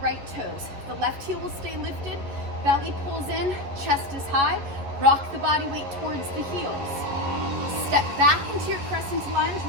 toes. The left heel will stay lifted, belly pulls in, chest is high, rock the body weight towards the heels. Step back into your crescent lunge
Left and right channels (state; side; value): late; left; 11 ms